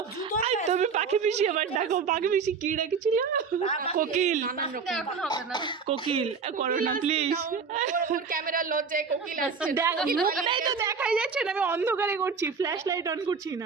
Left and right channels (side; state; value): left; quieter; 5.5 dB